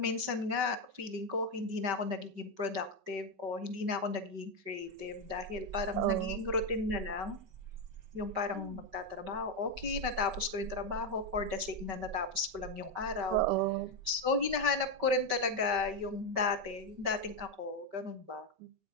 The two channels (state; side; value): late; left; 5.2 ms